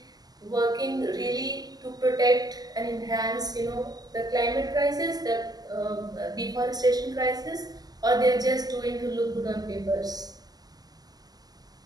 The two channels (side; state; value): left; late; 0.19 ms